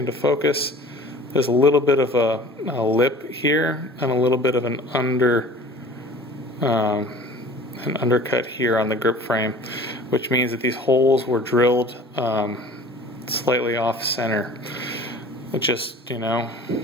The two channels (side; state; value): both; normal; correlation 0.45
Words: focus. There's a little bit of a lip here and a little bit of an undercut here on the grip frame, which means that these holes were drilled slightly off center. It just,